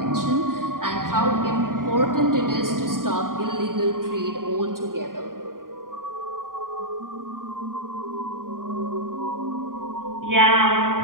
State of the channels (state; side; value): late; left; 0.91 ms